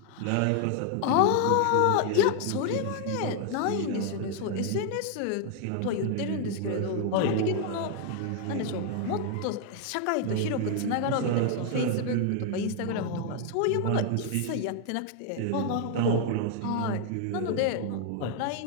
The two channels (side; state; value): both; different; correlation 0.00